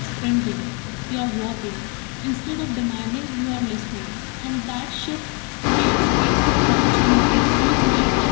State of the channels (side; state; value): right; quieter; 32.8 dB